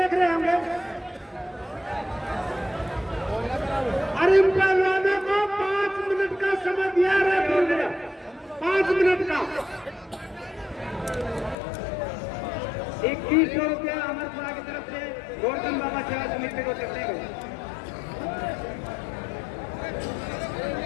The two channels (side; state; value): right; drops out; at 11.6 s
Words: रहे होंगे। अरे इन पहलवानों को 5 मिनट का समय दिया रहा, 5 मिनट का 2100 रुपया अमरपुरा की तरफ से गोवर्धन बाबा सेवा समिति को देते हैं।